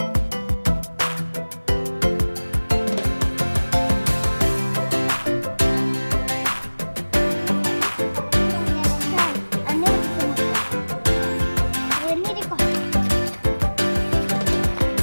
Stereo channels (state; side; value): inverted; both; correlation -1.00